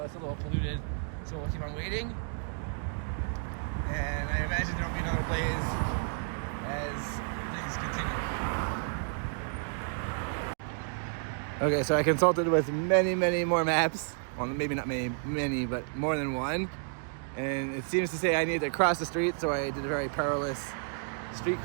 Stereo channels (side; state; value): left; silent; 57 dB below the other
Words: it's a little polluted, so we'll keep on waiting. And I imagine there will be another blaze as things continue. Okay, so I consulted with many more maps. Well, maybe not many, but more than one. And it seems to say I need to cross the street, so I did a very perilous street